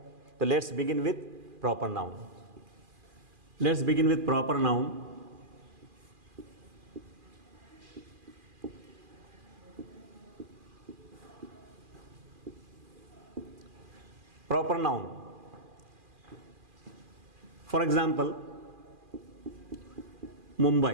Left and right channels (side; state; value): left; late; 2.4 ms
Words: तो let's begin with proper noun. Let's begin with proper noun. Proper noun, for example